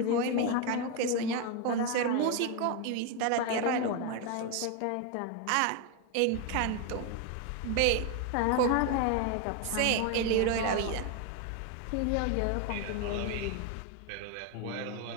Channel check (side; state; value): both; different; correlation 0.02